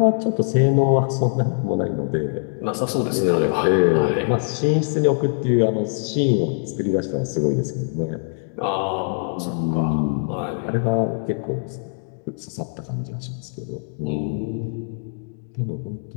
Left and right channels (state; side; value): silent; right; digital silence